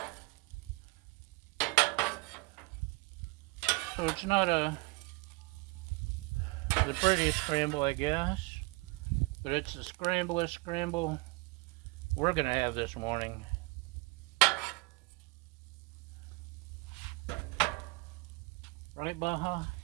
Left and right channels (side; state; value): left; quieter; 26.2 dB